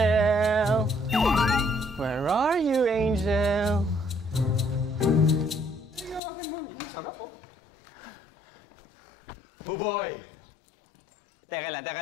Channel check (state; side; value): drops out; right; at 6.2 s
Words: Where are you, Angel? Buboy! Teka